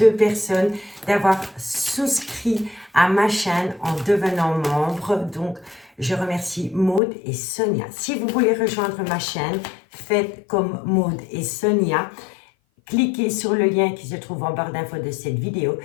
personnes d'avoir souscrit à ma chaîne en devenant membre. Donc, je remercie Maud et Sonia. Si vous voulez rejoindre ma chaîne, faites comme Maud et Sonia. Cliquez sur le lien qui se trouve en barre d'infos de cette vidéo.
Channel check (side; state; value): right; drops out; at 7.0 s